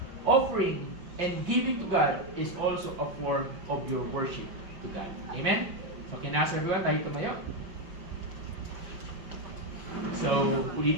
Offering and giving to God is also a form of your worship to God. Amen? So, can I ask everyone, tayo tumayo? So,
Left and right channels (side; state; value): left; late; 5.7 ms